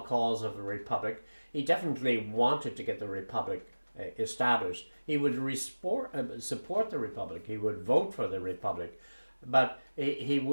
cause of the Republic. He definitely wanted to get the Republic established. He would support the Republic. He would vote for the Republic, but he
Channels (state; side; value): inverted; both; correlation -1.00